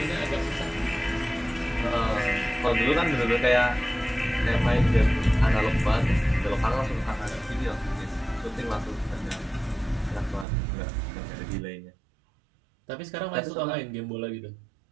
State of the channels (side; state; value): left; drops out; at 10.5 s